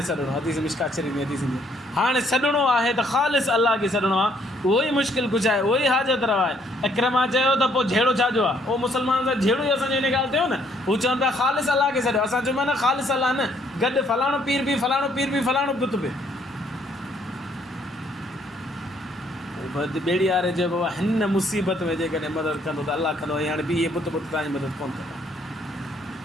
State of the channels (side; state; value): both; normal; correlation 0.67